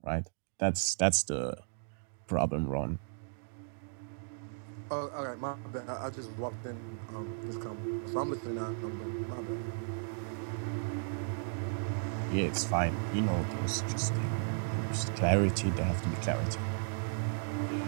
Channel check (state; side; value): silent; left; digital silence